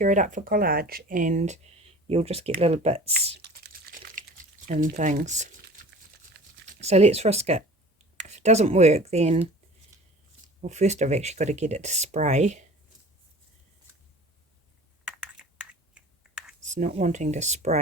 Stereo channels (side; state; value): both; normal; correlation 0.42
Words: it up for collage, and you'll just get little bits and things. So let's risk it. If it doesn't work, then, well, first I've actually got to get it to spray. It's not wanting to